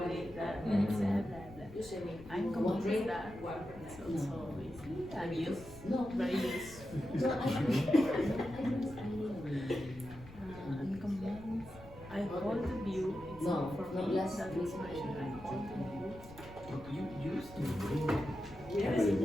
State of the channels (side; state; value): left; noise; rumble, 18 dB below the sound